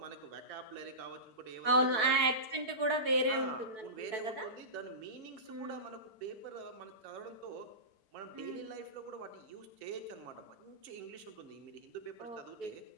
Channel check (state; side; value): late; left; 4.6 ms